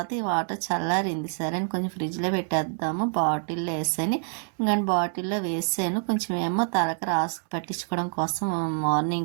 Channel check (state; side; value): silent; left; 60 dB below the other